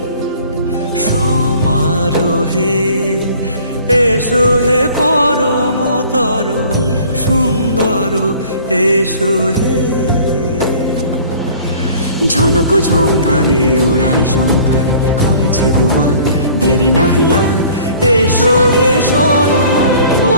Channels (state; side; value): inverted; both; correlation -0.50